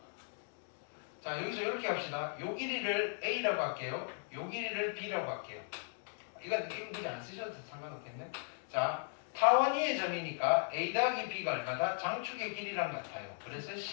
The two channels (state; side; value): silent; right; 53 dB below the other